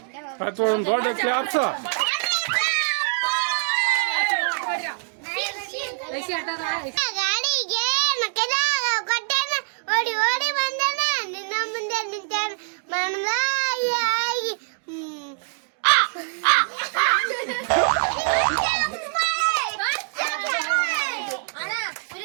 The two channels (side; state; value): left; silent; digital silence